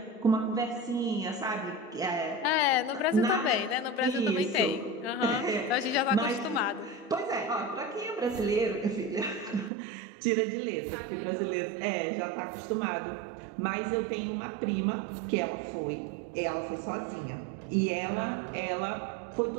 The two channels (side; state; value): left; drops out; at 9.7 s